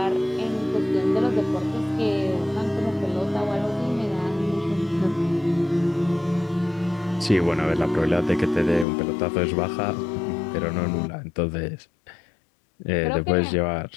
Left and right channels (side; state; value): right; drops out; at 8.8 s